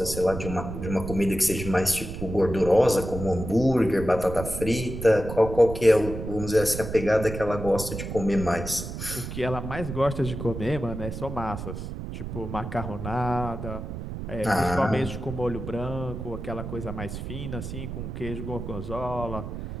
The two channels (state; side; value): noise; right; rumble, 7 dB below the sound